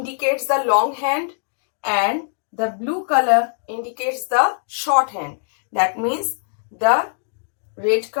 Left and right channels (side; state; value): right; silent; digital silence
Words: the long hand and the blue color indicates the short hand. That means the red